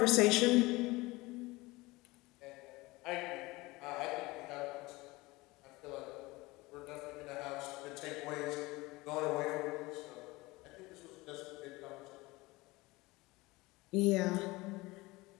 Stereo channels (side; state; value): right; quieter; 21.7 dB